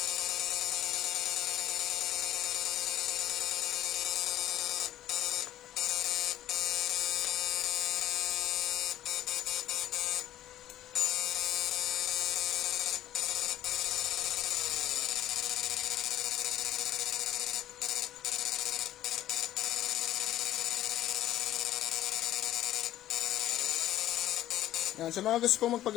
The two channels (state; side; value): quieter; right; 13.3 dB